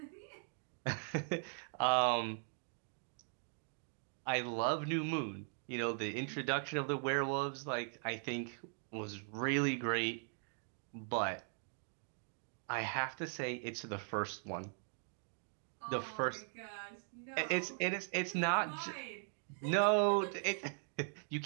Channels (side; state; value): left; silent; 51 dB below the other